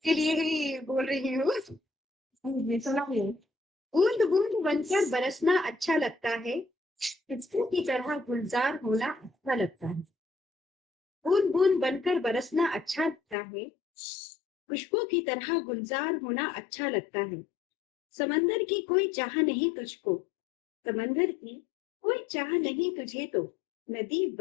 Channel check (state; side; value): drops out; right; at 13.4 s